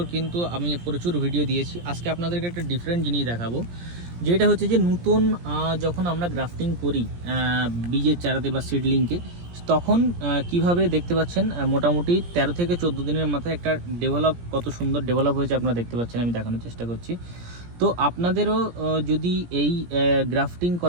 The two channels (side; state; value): left; late; 17 ms